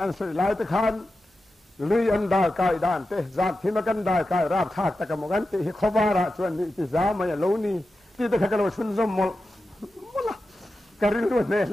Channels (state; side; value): normal; both; correlation 0.91